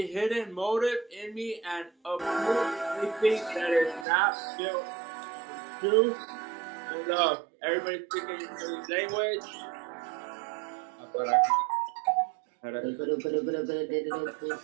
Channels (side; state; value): left; drops out; at 4.0 s